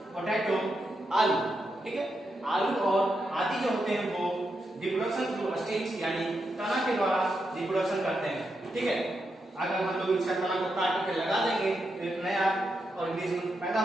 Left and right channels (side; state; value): both; normal; correlation 0.84